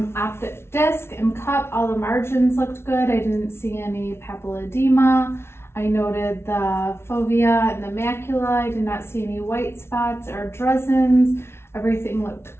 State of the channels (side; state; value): right; late; 0.12 ms